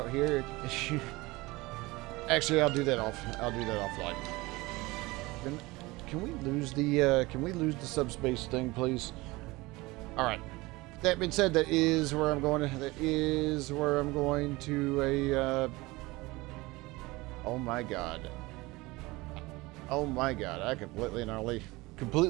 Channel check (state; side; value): quieter; left; 21.7 dB